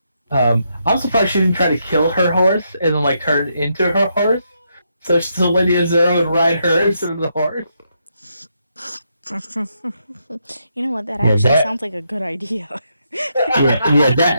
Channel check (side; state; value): both; inverted; correlation -0.79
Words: I'm surprised she didn't try to kill her horse and then like turn into her horse, so Lady Ezra would ride her instead of the horse. You know what? That Yeah, actually that- sounds like a good idea.